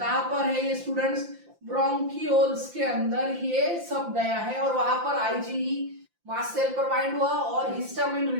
पर है ये स्टूडेंट्स? ब्रोंकियोल्स के अंदर ये सब गया है और वहां पर आईजीई मास्ट सेल पर बाइंड हुआ और हिस्टामिन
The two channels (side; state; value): left; late; 5.8 ms